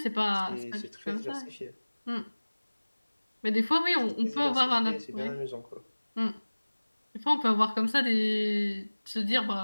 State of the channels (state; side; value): inverted; both; correlation -1.00